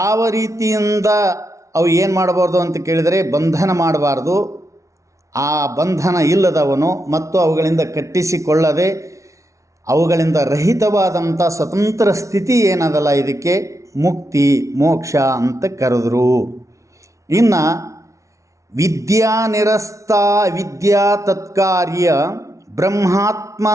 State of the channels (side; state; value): left; late; 0.15 ms